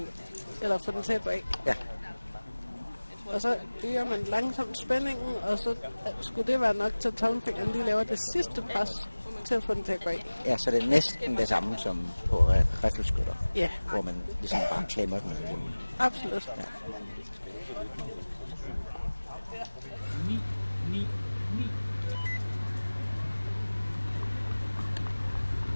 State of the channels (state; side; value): inverted; both; correlation -1.00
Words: eller få den til at gå af. Ja. Og så øger man langsomt spændingen, og så skulle det være nok til, at tommelfingeren lige laver det sidste pres til at få den til at gå af. Ja, så det er næsten det samme som på riffelskytter. Ja. Hvor man ligesom bare klemmer den. Absolut. Ja.